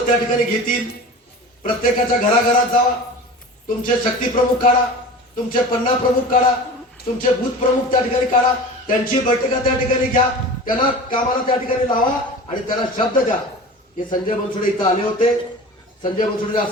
त्या ठिकाणी घेतील. प्रत्येकाच्या घराघरात जावा. तुमचे शक्ती प्रमुख काढा, तुमचे पन्ना प्रमुख काढा, तुमचे बूथ प्रमुख त्या ठिकाणी काढा. त्यांची बैठका त्या ठिकाणी घ्या. त्यांना कामाला त्या ठिकाणी लावा आणि त्यांना शब्द द्या की संजय बनसोडे इथं आले होते, संजय बनसोडे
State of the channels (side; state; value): both; normal; correlation 0.35